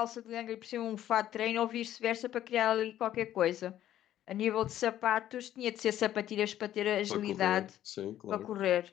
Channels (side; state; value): right; quieter; 12.1 dB